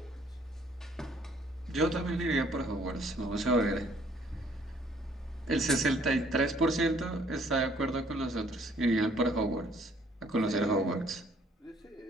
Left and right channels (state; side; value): normal; both; correlation 0.61